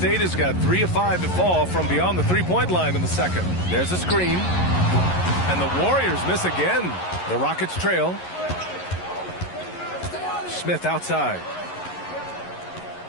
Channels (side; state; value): right; late; 11 ms